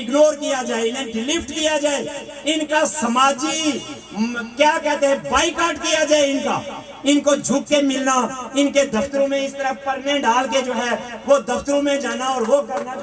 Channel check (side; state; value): both; identical; correlation 1.00